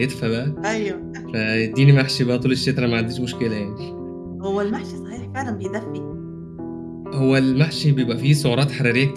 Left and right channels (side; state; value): both; identical; correlation 1.00